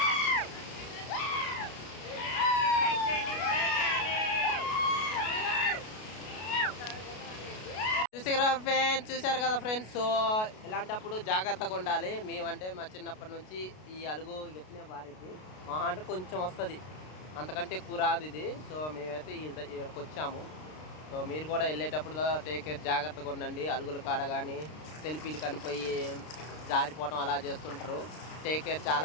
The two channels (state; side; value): late; right; 33 ms